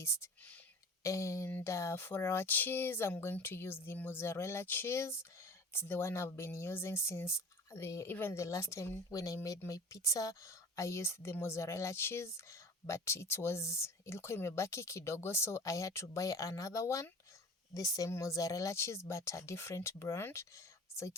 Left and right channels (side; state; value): both; normal; correlation 0.39